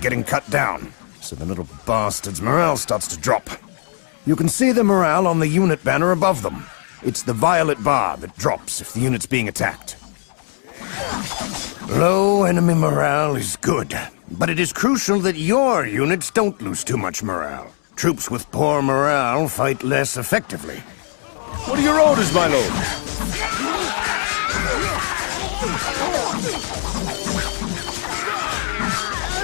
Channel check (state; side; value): silent; right; 66 dB below the other